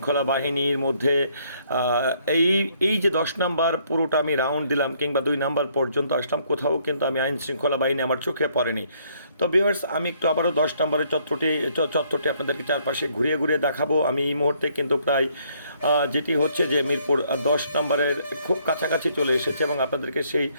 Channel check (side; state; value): both; inverted; correlation -0.67